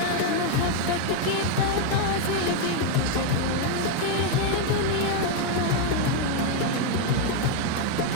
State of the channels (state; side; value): different; both; correlation 0.01